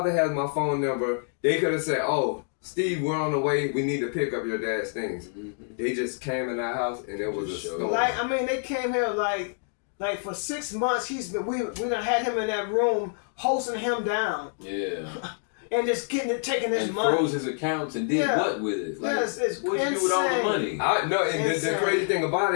has my phone number. They could have said, oh, Steve, we're on the way, we need to pick up your dad's things. They just came in our house and it was a storm. Like, I mean, they came here like for 6 months, we done had him in that room, hosting him down. Yeah. And just taking his money. Froze his accounts and did what with it? Like, it's what you do with all the money? The crazy thing about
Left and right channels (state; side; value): silent; right; 60 dB below the other